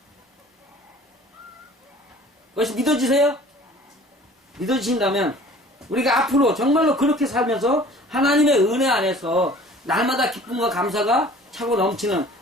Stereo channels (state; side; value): normal; both; correlation 0.48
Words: 그것이 믿어지세요? 믿어지신다면 우리가 앞으로 정말로 그렇게 살면서 하나님의 은혜 안에서 날마다 기쁨과 감사가 차고 넘치는